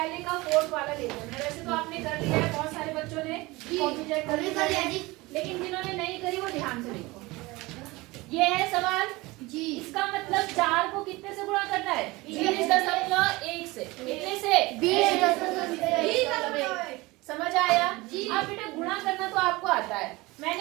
का 4th वाला ले लेते हैं। वैसे तो आपने कर लिया है, बहुत सारे बच्चों ने कॉपी चेक कर लिया, लेकिन जिन्होंने नहीं करी वो ध्यान से देखो। ये है सवाल जी, इसका मतलब 4 को कितने से गुणा करना है? 20.1 से। कितने से? 20.1। समझ आया? अब बेटा गुणा करना तो आपको आता है।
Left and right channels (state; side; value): quieter; left; 22.0 dB